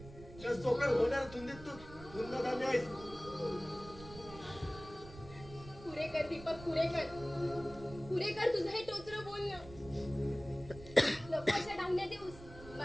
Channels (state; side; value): noise; right; rumble, 16 dB below the sound